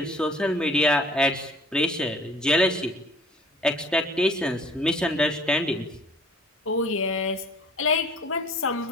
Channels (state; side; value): normal; both; correlation 0.51